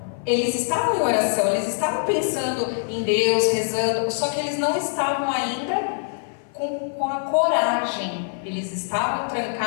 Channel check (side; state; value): right; silent; 57 dB below the other